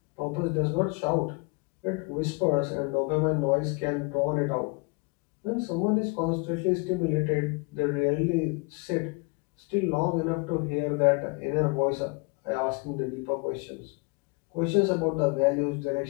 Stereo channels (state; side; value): quieter; right; 30.3 dB